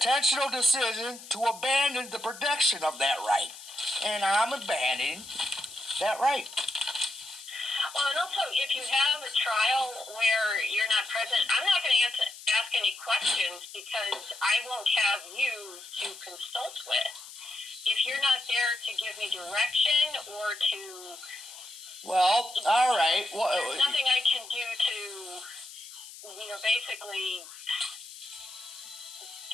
decision to abandon the protection of that right. And I'm abandoning that right. Well, and also, if you have a trial where you're not present, I'm not going to ask any questions because I won't have you to consult with. If you're not there to give me direction or to... Well, all right. Well, there's nothing I can do to, basically...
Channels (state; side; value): noise; left; hiss, 15 dB below the sound